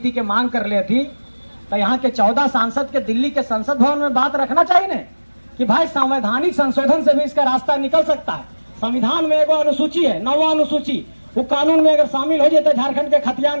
के मांग कर ले थी, तो यहाँ के 14 सांसद के दिल्ली के संसद भवन में बात रखना चाहिए ना कि भाई संवैधानिक संशोधन से भी इसका रास्ता निकल सकता है। संविधान में एक अनुसूची है, 9वां अनुसूची, वो कानून में अगर शामिल हो जाते झारखंड के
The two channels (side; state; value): both; inverted; correlation -1.00